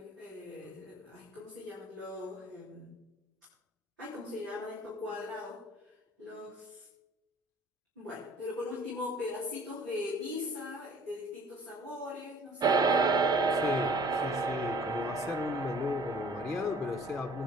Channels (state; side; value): normal; both; correlation 0.52